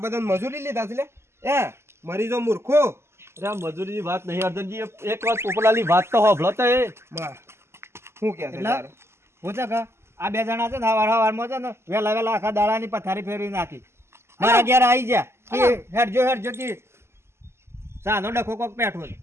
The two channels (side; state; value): left; late; 0.12 ms